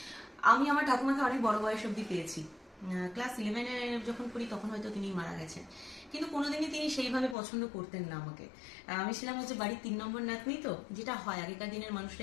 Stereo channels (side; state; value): right; drops out; at 7.4 s